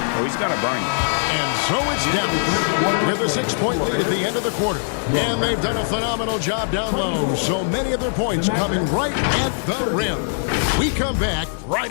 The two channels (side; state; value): right; silent; digital silence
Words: or he's going to burn you. And so it's Dallas with a 6-point lead at the end of the quarter. And they've done a phenomenal job down low. So many of their points coming right at the rim. We come back right